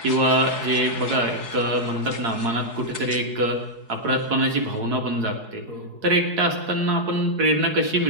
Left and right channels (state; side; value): late; left; 4.7 ms